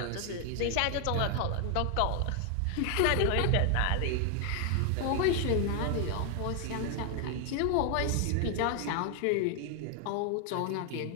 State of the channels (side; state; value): both; different; correlation 0.00